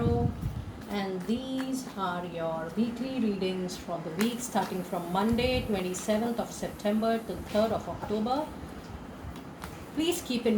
and these are your weekly readings for the week starting from Monday 27th of September to 3rd of October. Please keep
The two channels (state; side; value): identical; both; correlation 1.00